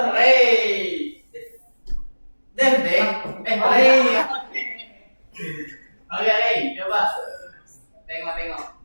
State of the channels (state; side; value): inverted; both; correlation -1.00